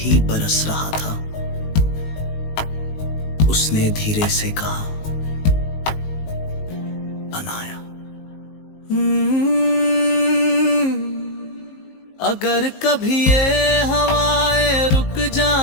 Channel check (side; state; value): right; late; 19 ms